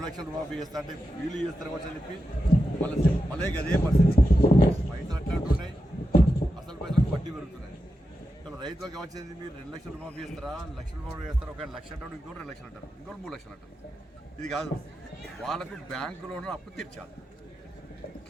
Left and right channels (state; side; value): normal; both; correlation 0.89